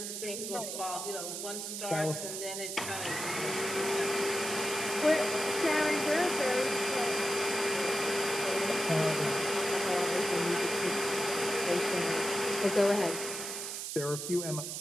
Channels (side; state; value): right; noise; hiss, 5 dB below the sound